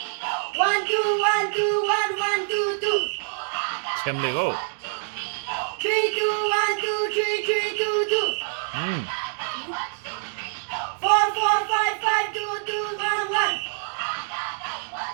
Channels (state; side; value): silent; left; digital silence